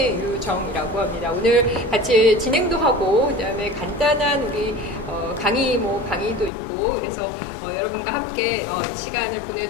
합니다. 오늘 같이 진행도 하고 그다음에 간단한 우리 강의도 있고 그래서 여러분과 함께 이 시간을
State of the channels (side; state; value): right; drops out; at 6.5 s